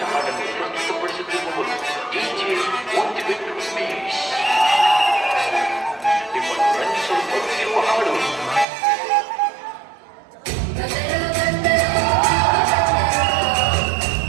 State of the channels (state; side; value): drops out; left; at 8.7 s